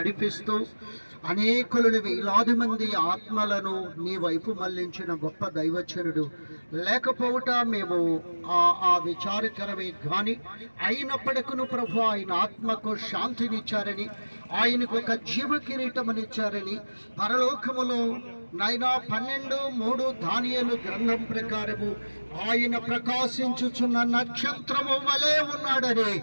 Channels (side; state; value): both; inverted; correlation -1.00